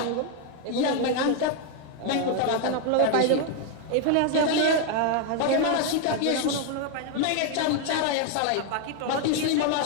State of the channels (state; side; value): different; both; correlation 0.01